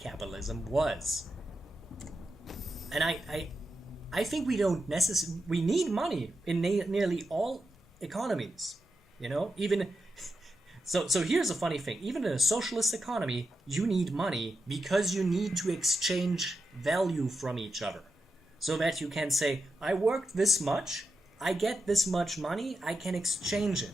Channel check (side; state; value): both; normal; correlation 0.88